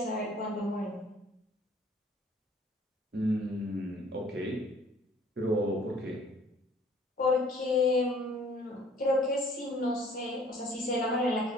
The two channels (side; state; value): both; normal; correlation 0.56